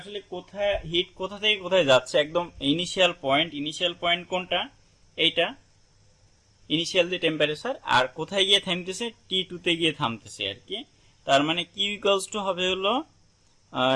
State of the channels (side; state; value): both; identical; correlation 1.00